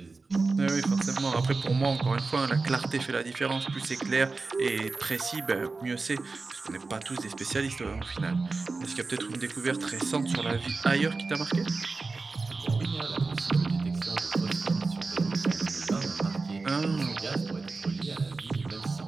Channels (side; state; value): left; quieter; 3.9 dB